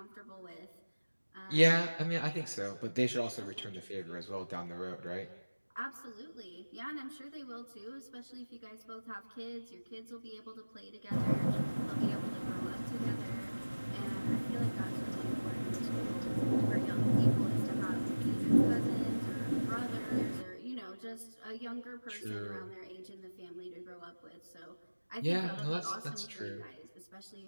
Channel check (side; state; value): both; inverted; correlation -1.00